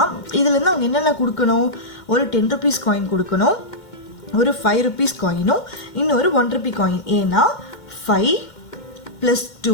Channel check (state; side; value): late; right; 2.1 ms